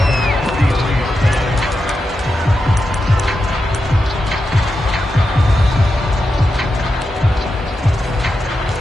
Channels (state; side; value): normal; both; correlation 0.88